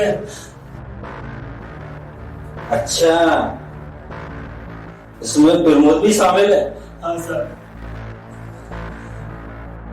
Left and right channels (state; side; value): identical; both; correlation 1.00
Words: अच्छा, इसमें प्रमोद भी शामिल है? हाँ सर।